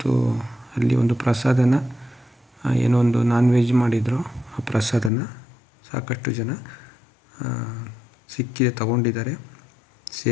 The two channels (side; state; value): right; drops out; at 5.1 s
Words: ಅಲ್ಲಿ ಒಂದು ಪ್ರಸಾದನ ಏನೋ ಒಂದು ನಾನ್ ವೆಜ್ ಮಾಡಿದರು. ಆ ಪ್ರಸಾದನ ಸಾಕಷ್ಟು ಜನ ಸಿಕ್ಕಿದೆ ತಗೊಂಡಿದ್ದಾರೆ,